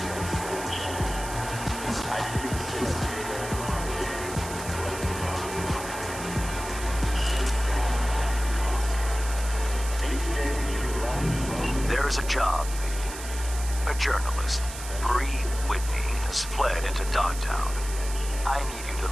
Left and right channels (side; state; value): right; noise; hiss, 11 dB below the sound